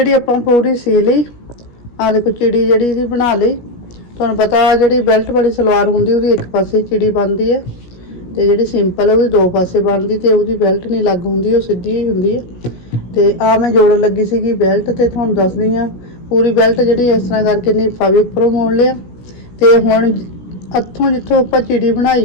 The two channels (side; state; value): right; late; 17 ms